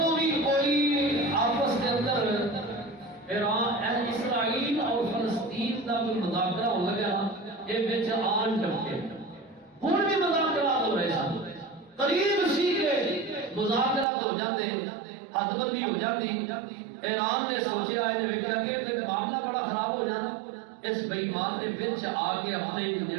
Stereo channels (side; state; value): left; drops out; at 14.1 s